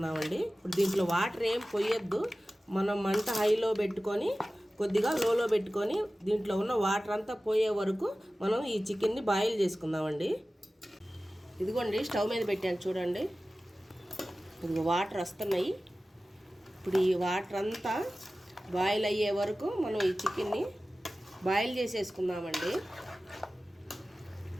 ఇప్పుడు దీంట్లో వాటర్ ఏం పోయొద్దు. మనం మంట హైలో పెట్టుకొని కొద్దిగా లోలో పెట్టుకొని దీంట్లో ఉన్న వాటర్ అంతా పోయే వరకు మనం ఈ చికెన్ని బాయిల్ చేసుకుందామండి. ఇదిగోండి, స్టవ్ మీద పెట్టాను చూడండి. ఇదిగో వాటర్ వస్తున్నాయి. ఇప్పుడు ఈ వాటర్ అంతా బాయిల్ అయ్యే వరకు మనం ఈ చికెన్ని బాయిల్ చేసేసుకుందామండి.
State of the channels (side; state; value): both; normal; correlation 0.96